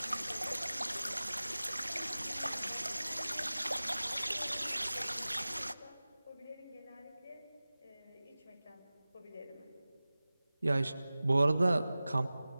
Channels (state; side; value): inverted; both; correlation -0.98